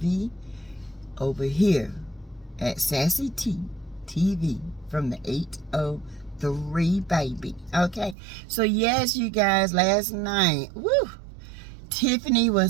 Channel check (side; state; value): left; drops out; at 8.2 s